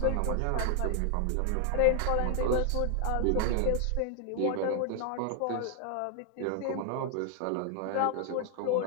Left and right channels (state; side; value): different; both; correlation 0.00